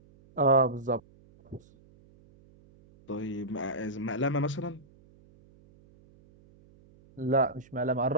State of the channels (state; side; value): noise; right; hum, 27 dB below the sound